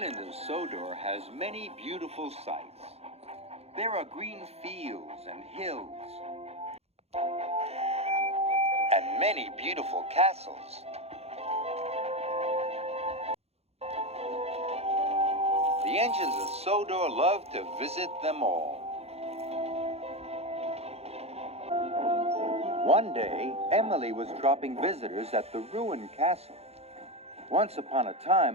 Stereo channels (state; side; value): late; left; 0.30 ms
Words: of Sodor has many beautiful sights. There are green fields and hills, and many beautiful castles. The engines of Sodor love to visit them all. One day, Emily was dropping visitors at the ruined castle. Once upon a